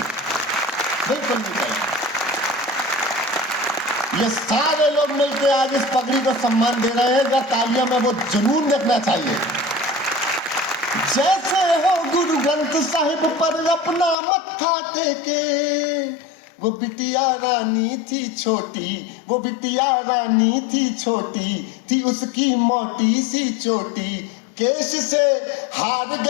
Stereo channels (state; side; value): drops out; right; at 14.2 s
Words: बिल्कुल नहीं चलेंगी। ये सारे लोग मिलकर आज इस पगड़ी को सम्मान दे रहे हैं, अगर तालियां में वो जुनून देखना चाहिए। जैसे हो गुरु ग्रंथ साहिब पर अपना मत्था टेके, वो बिटिया रानी थी छोटी, वो बिटिया रानी थी छोटी, थी उसकी मोटी सी चोटी, केश से हार